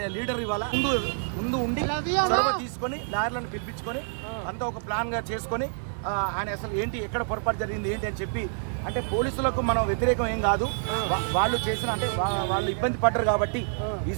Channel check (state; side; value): silent; left; digital silence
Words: లీడర్ ఇవాళ ముందు ఉండి చొరవ తీసుకొని లాయర్లను పిలిపించుకొని అంతా ఒక ప్లాన్గా చేసుకొని ఆయన అసలు ఏంటి ఎక్కడ పొరపాటు జరిగింది ఏంటి అని చెప్పి, అంటే పోలీసులకు మనం వ్యతిరేకం ఏం కాదు, వాళ్ళు చేసిన అంటే వాళ్ళు ఇబ్బంది పడ్డారు కాబట్టి ఈ